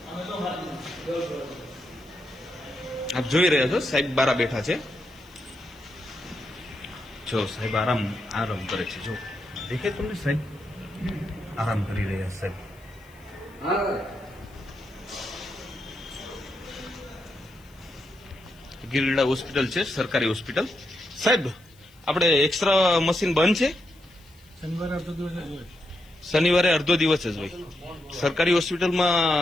આપ જોઈ રહ્યા છો સાહેબ બારા બેઠા છે. જો સાહેબ આરામ કરે છે. જો દેખે તમને સાહેબ આરામ કરી રહ્યા સાહેબ. ગિરડા હોસ્પિટલ છે, સરકારી હોસ્પિટલ. સાહેબ આપણે એક્સ્ટ્રા મશીન બંધ છે? શનિવારે અડધો દિવસ જ હોય. સરકારી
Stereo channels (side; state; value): left; noise; hiss, 29 dB below the sound